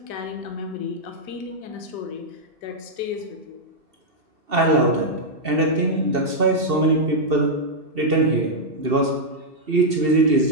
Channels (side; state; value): left; late; 2.7 ms